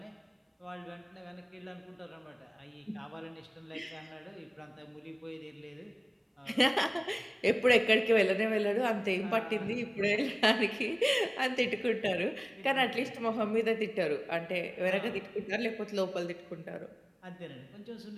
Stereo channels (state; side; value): identical; both; correlation 1.00